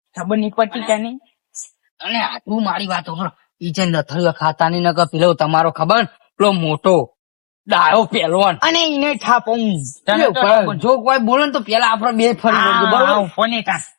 ખબર નહીં પતી તને અને આટલું મારી વાતો કરો ઈ જે નથળીઓ ખાતા ની નકર પેલો તમારો ખબર પેલો મોટો ડાળો પહેલવાન અને એને થાપું જો કોઈ બોલે ને તો પેલા આપડે બે ફરી વળીએ બરોબર ફોને તા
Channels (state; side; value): silent; right; digital silence